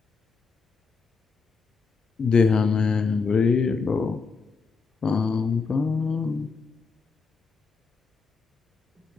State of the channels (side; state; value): right; quieter; 4.9 dB